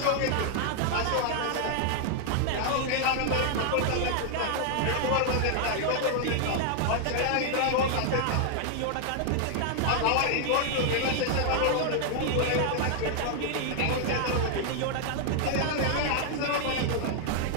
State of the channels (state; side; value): different; both; correlation 0.00